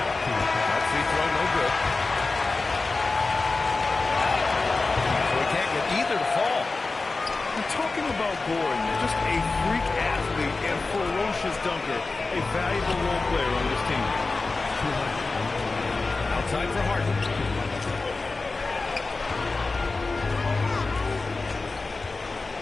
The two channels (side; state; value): right; quieter; 3.7 dB